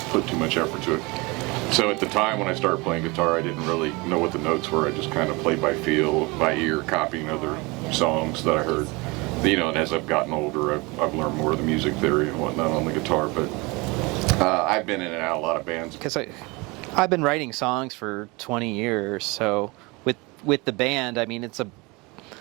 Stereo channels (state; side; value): quieter; left; 25.6 dB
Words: put too much effort to it. So at the time when I started playing guitar, I didn't really know what the notes were. I just kind of played by feel, by ear, copying other songs that I heard. And as I've gotten older, I've learned more of the music theory and whatnot on the guitar, but I've been in and out of a lot of bands. because I've been writing songs for 20 years, so with the band, I mean, it's